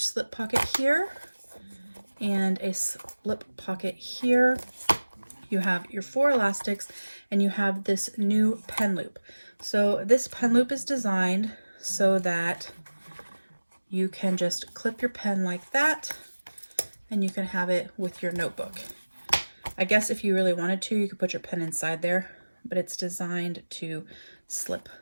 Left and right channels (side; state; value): both; inverted; correlation -1.00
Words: pocket here and a slip pocket here. You have your 4 elastics, and you have this new pen loop. So this pen loop is designed so that you can just clip your pen like that, and you can have it with your notebook. I guess if you really wanted to, you could put your pen inside there, but it's designed to slip